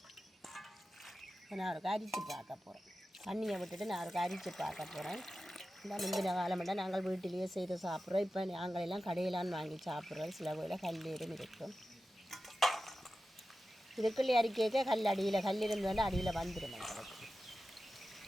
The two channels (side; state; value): both; normal; correlation 0.93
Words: நான் ஒரு அரிச்சு பார்க்க போகிறேன். தண்ணியை விட்டுட்டு நான் ஒரு அரிச்சு பார்க்க போகிறேன். இந்த முந்தின காலமெல்லாம் நாங்கள் வீட்டிலேயே செய்து சாப்பிட்றோம். இப்போ நாங்கள் எல்லாம் கடையிலான்னு வாங்கி சாப்பிட்றோம். சில வேளையில் கல்லீரும் இருக்கும். இதுக்குள்ளே அரிக்க கல் அடியில் கல் இருந்தோன்னா அடியில் வந்துடும் எங்களுக்கு.